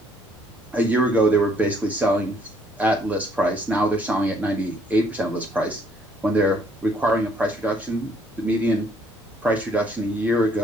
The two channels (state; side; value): normal; both; correlation 0.65